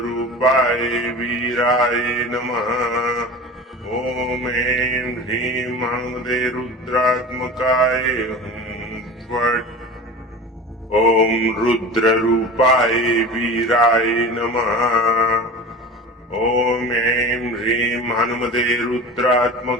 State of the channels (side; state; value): both; normal; correlation 0.34